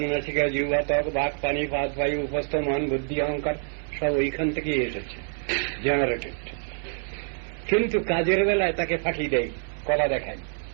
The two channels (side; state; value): left; silent; 59 dB below the other